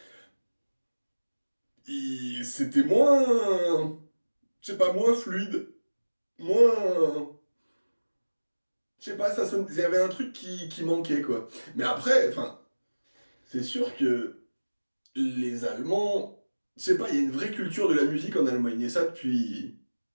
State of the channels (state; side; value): inverted; both; correlation -1.00